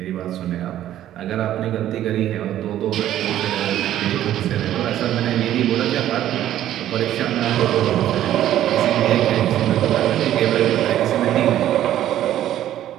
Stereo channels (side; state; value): left; quieter; 12.3 dB